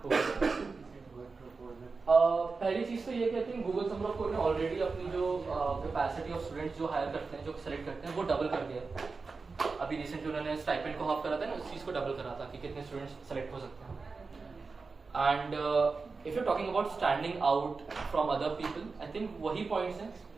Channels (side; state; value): left; quieter; 4.3 dB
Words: पहली चीज़ तो ये कि I think Google summer of code ने ऑलरेडी अपनी जो कैपेसिटी ऑफ स्टूडेंट्स जो हायर करते हैं, जो सेलेक्ट करते हैं, वो डबल कर दिया है। अभी रिसेंटली उन्होंने स्टाइपेंड को हाफ करा था ना, उस चीज़ को डबल करा था कि कितने स्टूडेंट्स सेलेक्ट हो सकते हैं। And if you talking about standing out from other people, I think वही पॉइंट्स हैं,